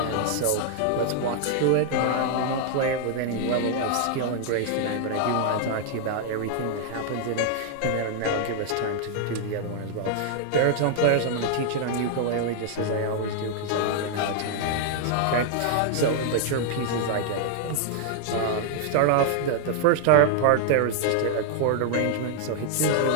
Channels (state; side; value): different; both; correlation 0.00